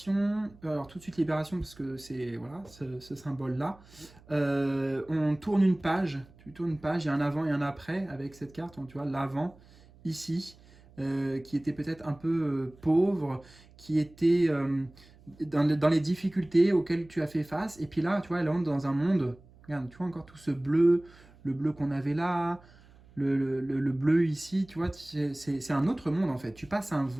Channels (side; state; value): right; noise; hum, 25 dB below the sound